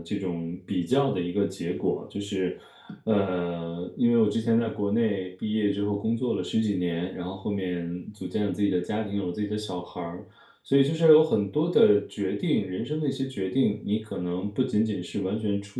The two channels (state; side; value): identical; both; correlation 1.00